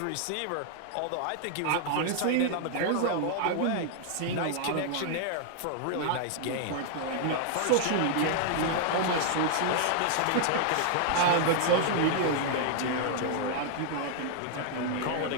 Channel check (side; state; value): both; different; correlation 0.00